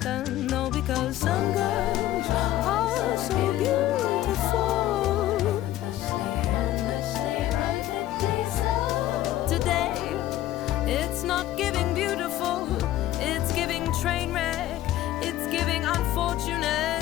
No, because some girls are so beautiful. Today, it's not giving beautiful, it's giving train wreck, it's giving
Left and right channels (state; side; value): quieter; right; 13.9 dB